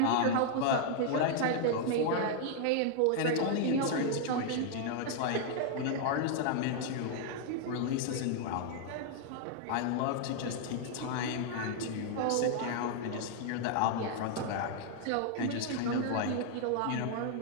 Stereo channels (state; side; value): different; both; correlation 0.00